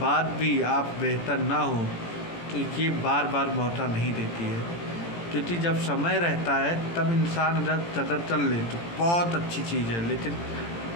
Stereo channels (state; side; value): late; right; 18 ms